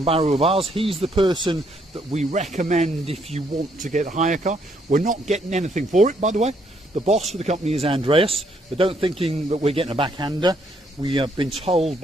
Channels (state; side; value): normal; both; correlation 0.71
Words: of ours. He's the person that we recommend if you want to get a hire car. We're not getting anything for it, by the way. The boss for the company is Andreas, but don't thinking that we're getting a backhander. We have been told